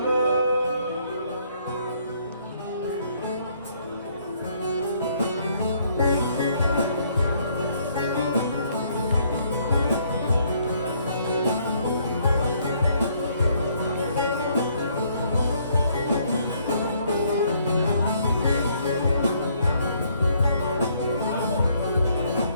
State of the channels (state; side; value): inverted; both; correlation -0.67